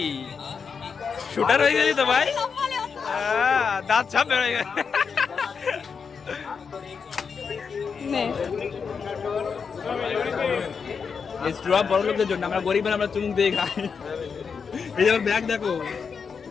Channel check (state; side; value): quieter; right; 5.9 dB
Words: শুটার হয়ে গেলি তো ভাই। দাঁত সব বেরোয় গেছে। নে। স্ট্রপ বড় লোকদের জন্য, আমরা গরিব আমরা চুমুক দিয়ে খাই। এই যে ব্যাগ দেখো